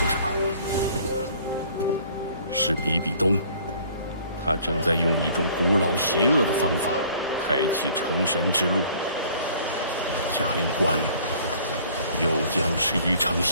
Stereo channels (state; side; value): inverted; both; correlation -0.54